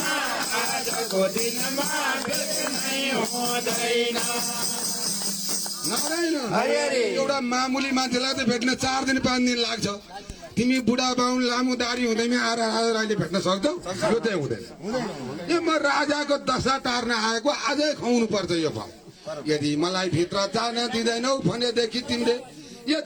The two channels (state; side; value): identical; both; correlation 1.00